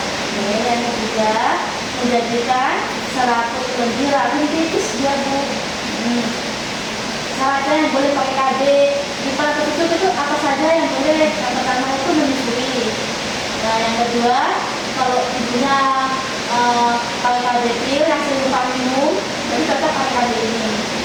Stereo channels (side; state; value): both; identical; correlation 1.00